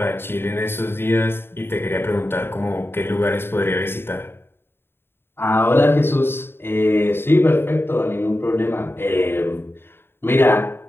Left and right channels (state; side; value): late; right; 0.11 ms